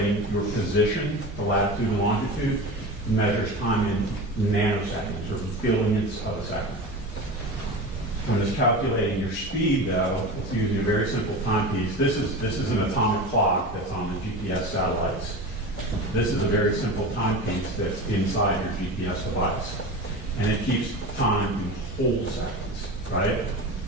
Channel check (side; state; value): both; normal; correlation 0.28